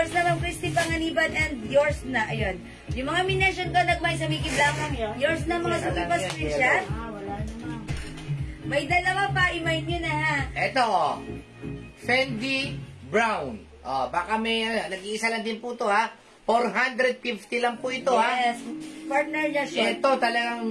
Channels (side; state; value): both; identical; correlation 1.00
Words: na, Ma'am Christy Panganiban. And yours na, ayun. Yung mga mination ko, nagmay sa Mickey Black. Yours na, mga suki pa screenshot. Wala naman. May dalawa pa, i-mind nyo na ha. Eto, oh. Fendi Brown. Oh, baka may, nag-iisa lang din po to, ha? 450 lang po ito, ha? Yes, partner niya short. Ito, talagang